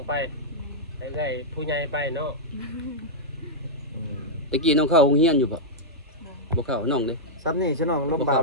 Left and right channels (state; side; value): normal; both; correlation -0.06